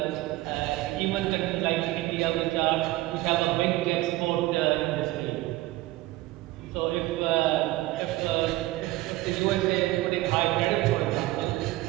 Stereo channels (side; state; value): left; quieter; 17.9 dB